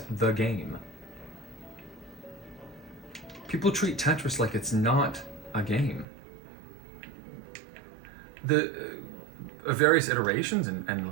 the game. People treat Tetris like it's not a game. The various iterations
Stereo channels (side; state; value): left; drops out; at 6.1 s